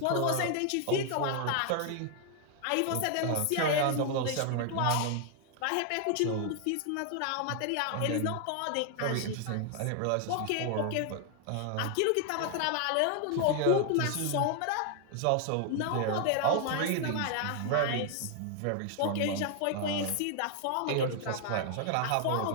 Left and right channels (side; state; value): both; different; correlation 0.00